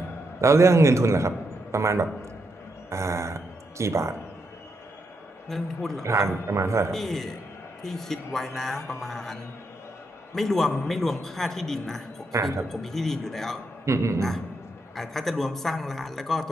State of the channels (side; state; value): both; normal; correlation 0.81